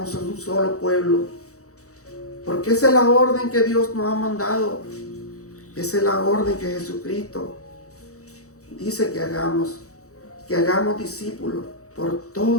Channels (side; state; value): right; late; 0.65 ms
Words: un solo pueblo. Porque esa es la orden que Dios nos ha mandado. Esa es la orden que Jesucristo dice que hagamos discípulos por